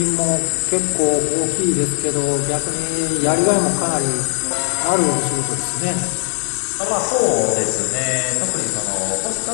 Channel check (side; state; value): right; silent; digital silence